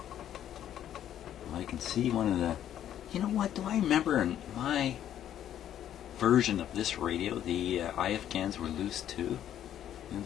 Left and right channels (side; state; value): right; quieter; 10.8 dB